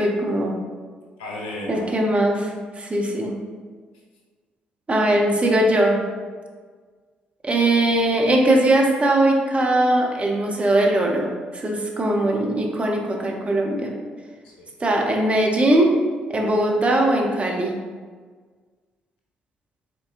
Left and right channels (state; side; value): normal; both; correlation 0.75